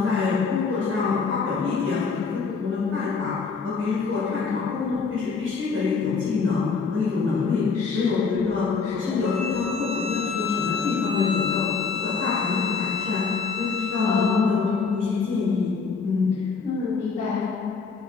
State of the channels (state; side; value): quieter; right; 4.9 dB